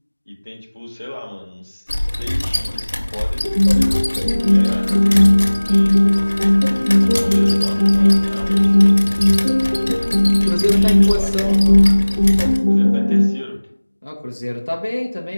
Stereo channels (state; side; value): inverted; both; correlation -1.00